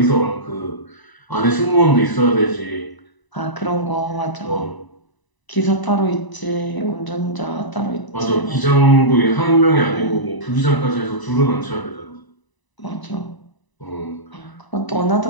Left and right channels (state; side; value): late; right; 1.0 ms